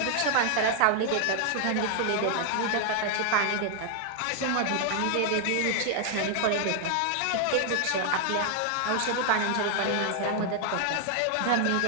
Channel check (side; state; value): both; different; correlation 0.00